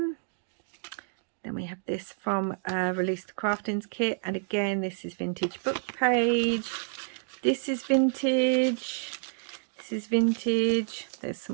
Then we have this from Release the Craftings kit, and again this is vintage book page. This is vintage. This is vintage. There's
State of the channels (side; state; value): left; silent; digital silence